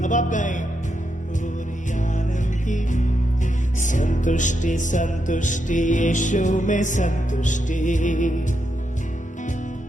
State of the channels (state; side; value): normal; both; correlation 0.83